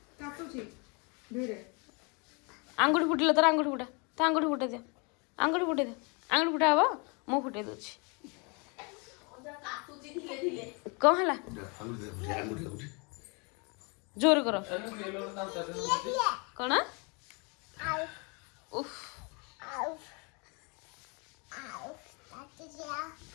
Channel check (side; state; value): right; quieter; 32.1 dB